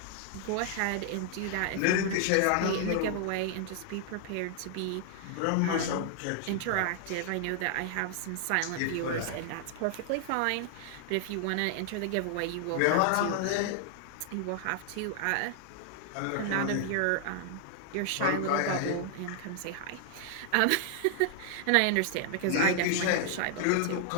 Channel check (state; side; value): different; both; correlation 0.00